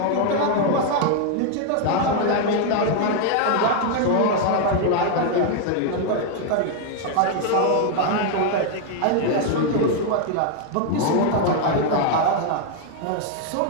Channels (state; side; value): different; both; correlation 0.00